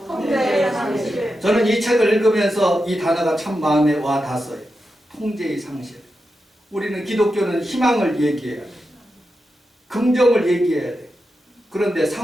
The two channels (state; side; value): normal; both; correlation 0.89